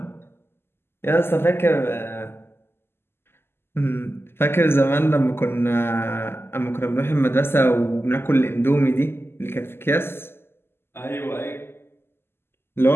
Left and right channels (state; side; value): late; right; 0.12 ms